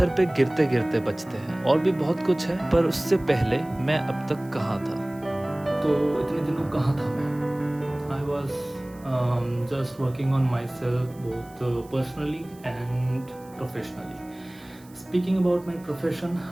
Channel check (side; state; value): right; noise; hiss, 26 dB below the sound